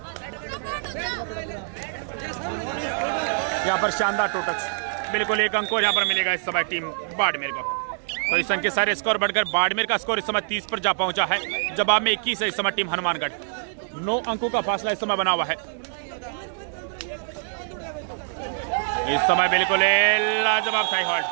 यहाँ पर शानदार टू टच बिल्कुल एक अंक और यहाँ पर मिलेगा इस समय टीम बाड़मेर को। तो इस अंक के सारे स्कोर बढ़कर बाड़मेर का स्कोर इस समय 30 पर जा पहुंचा है। जवाब में 21 है इस समय टीम हनुमानगढ़। 9 अंकों का फासला इस समय बना हुआ है। इस समय बिल्कुल लाजवाब था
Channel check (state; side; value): silent; left; digital silence